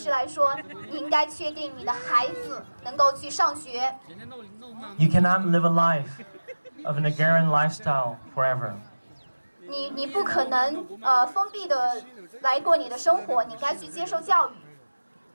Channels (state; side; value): inverted; both; correlation -1.00